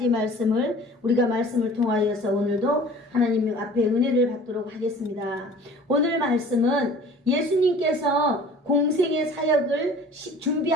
말씀을 우리가 말씀을 통하여서 오늘도 하나님 앞에 은혜를 받도록 하겠습니다. 오늘 말씀은 예수님께서 공생의 사역을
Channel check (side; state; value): both; normal; correlation 0.46